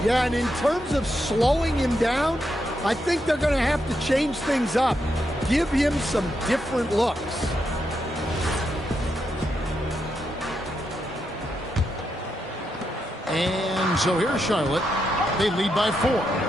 Yeah, and in terms of slowing him down, I think they're going to have to change things up. Give him some different looks. And so here's Charlotte. They lead by 4.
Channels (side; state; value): both; normal; correlation 0.83